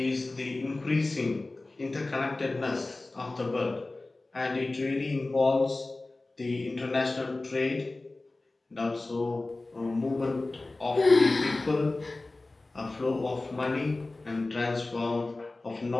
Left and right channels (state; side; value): quieter; right; 3.1 dB